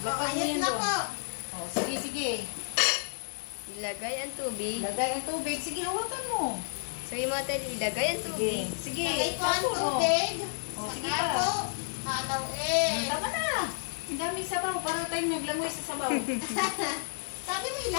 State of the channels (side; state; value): right; silent; digital silence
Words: mo Ayos yan na doon. po. Oh, sige, sige. Ilagay ang tubig. Ilagay ang tubig. Sige, hawakan mo. Sabi mo, Ate Aileen, ilagay ang Sige. tubig. Sige. Lagay ko ang Tapos, oh. tubig. Oh, sige Saka pa. po, halawin. Tama na. Ang daming sabaw. Para tayong naglangoy sa sabaw. Sabi mo yung